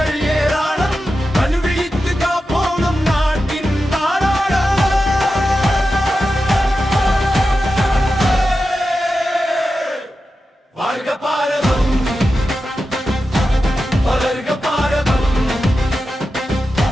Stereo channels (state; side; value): normal; both; correlation 0.91